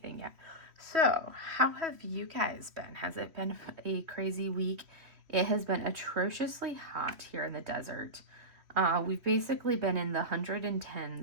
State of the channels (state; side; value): late; left; 3.1 ms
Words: yet. So how have you guys been? Has it been a crazy week? It has been atrociously hot here in the desert. We've basically been in the